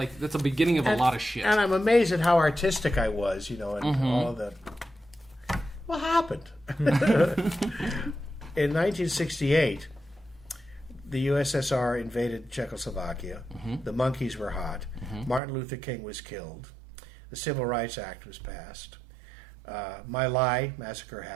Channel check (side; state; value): left; drops out; at 15.4 s